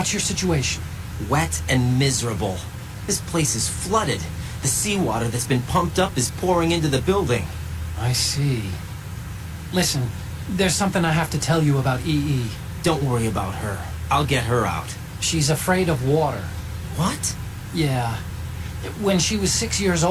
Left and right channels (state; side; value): identical; both; correlation 1.00